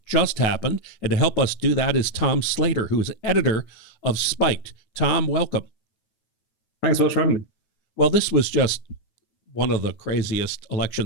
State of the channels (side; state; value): right; late; 9.3 ms